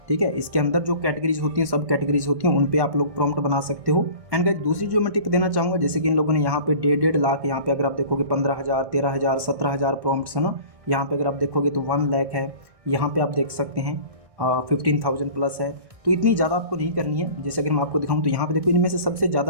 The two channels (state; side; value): late; left; 1.1 ms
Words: ठीक है, इसके अंदर जो कैटेगरीज होती हैं, सब कैटेगरीज होती हैं, उन पे आप लोग प्रॉम्प्ट बना सकते हो। एंड गाइस दूसरी जो मैं टिप देना चाहूँगा, जैसे कि इन लोगों ने यहाँ पे 1.5 लाख, यहाँ पे अगर आप देखोगे 15,000, 13,000, 17,000 प्रॉम्प्ट्स है ना। यहाँ पे अगर आप देखोगे तो 1 लाख है, यहाँ पे आप देख सकते हैं 15,000+ है। तो इतनी ज़्यादा आपको नहीं करनी है। जैसे अगर मैं आपको दिखाऊँ तो यहाँ पे देखो, इनमें से सबसे